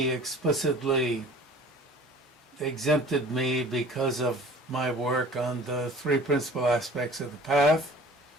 explicitly exempted me because of my work on the three principal aspects of the path,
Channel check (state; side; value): normal; both; correlation 0.46